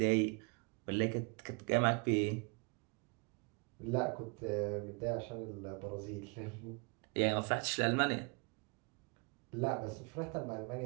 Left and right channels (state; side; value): quieter; left; 31.6 dB